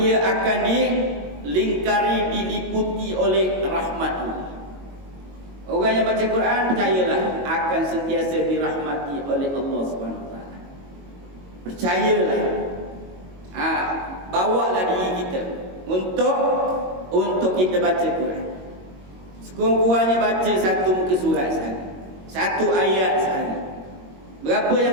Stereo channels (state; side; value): late; left; 22 ms